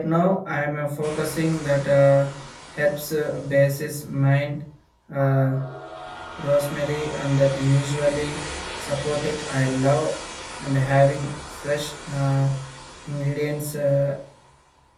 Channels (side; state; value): both; identical; correlation 1.00